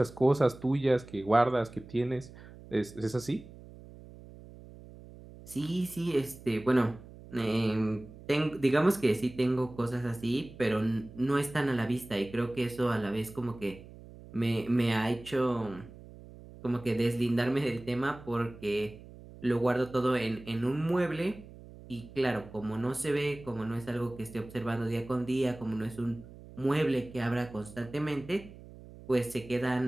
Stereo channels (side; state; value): right; noise; hum, 18 dB below the sound